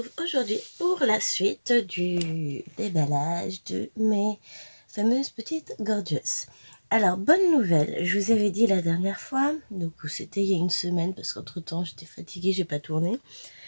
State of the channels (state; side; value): inverted; both; correlation -1.00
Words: aujourd'hui pour la suite du déballage de mes fameuses petites gorgeous. Alors, bonne nouvelle, je vous avais dit la dernière fois, donc c'était il y a une semaine parce qu'entre temps j'étais fatiguée, j'ai pas tourné,